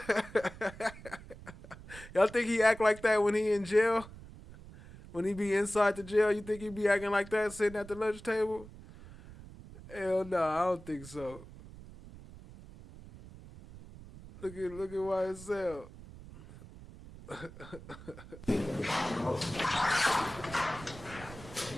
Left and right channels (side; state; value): right; noise; rumble, 17 dB below the sound